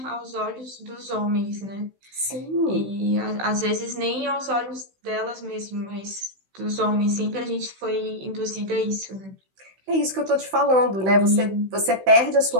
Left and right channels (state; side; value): late; left; 16 ms